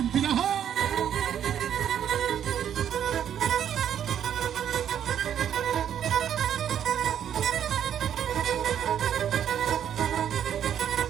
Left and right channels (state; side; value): quieter; left; 9.5 dB